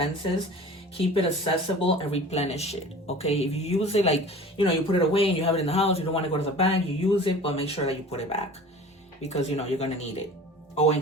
Keep it accessible and replenish it. Okay, if you use it, like, you know, you put it away and you have it in the house, you don't want to go to the bank, you use it, but make sure that you put it back, because you know you're gonna need it, or in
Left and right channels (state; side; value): normal; both; correlation 0.41